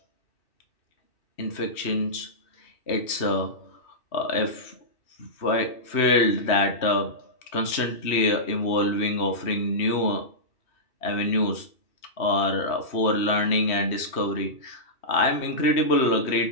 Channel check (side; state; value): right; late; 2.6 ms